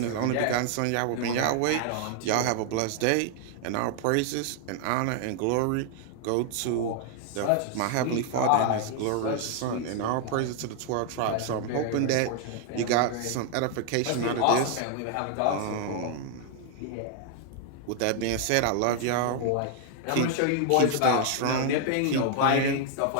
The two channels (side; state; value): both; different; correlation 0.00